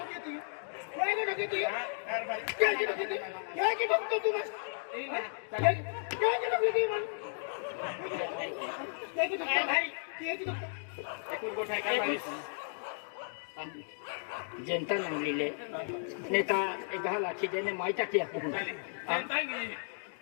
तू काय के ठोकी तू काय के ठोकी तू काय के ठोकतो तू बस काय के ठोकी तू मन काय के ठोकतो भाई काय के ठोकतो एकूण गोठ आहे कारभारी जनता नावलेले नेता 10 लाखी देणे माहिती की जनता गेली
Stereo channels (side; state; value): right; silent; digital silence